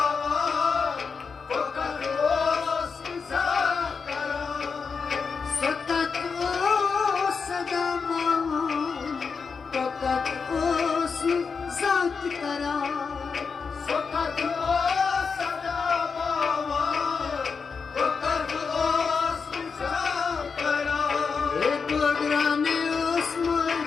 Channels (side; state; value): right; quieter; 5.3 dB